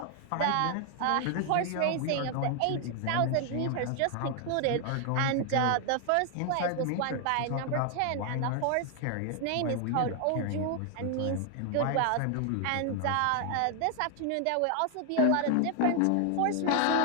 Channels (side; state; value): both; different; correlation 0.00